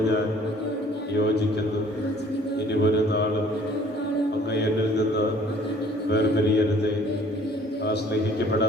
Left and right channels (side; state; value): both; normal; correlation 0.55